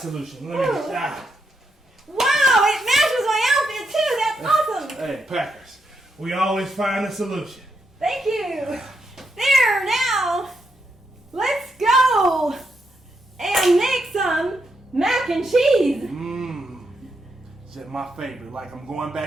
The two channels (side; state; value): both; normal; correlation 0.81